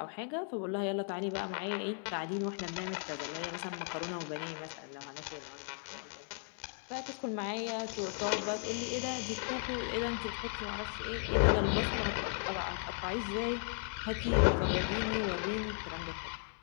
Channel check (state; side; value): silent; right; 54 dB below the other